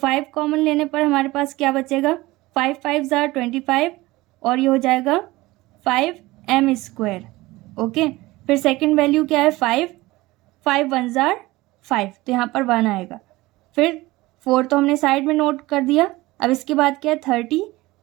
कॉमन लेने पर हमारे पास क्या बचेगा 5 5 जार 25 और ये हो जाएगा 5m स्क्वायर। ओके, फिर सेकंड वैल्यू क्या है 5 5 1 जार 5, तो यहाँ पर 1 आएगा। फिर 4 तो हमने साइड में नोट कर दिया। अब इसके बाद क्या है 30,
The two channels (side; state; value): left; quieter; 19.7 dB